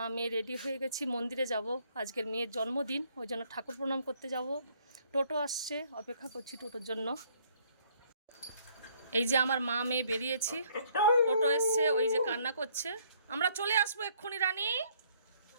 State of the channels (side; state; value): both; inverted; correlation -0.64